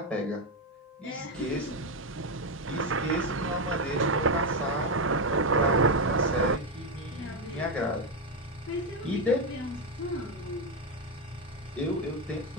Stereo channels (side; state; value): both; normal; correlation 0.08